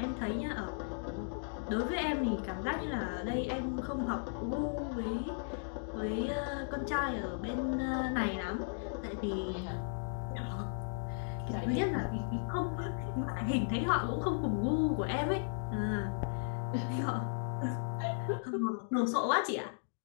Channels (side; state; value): right; silent; digital silence